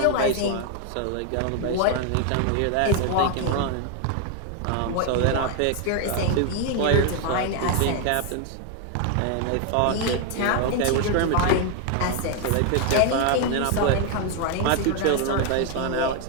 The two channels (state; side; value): different; both; correlation 0.01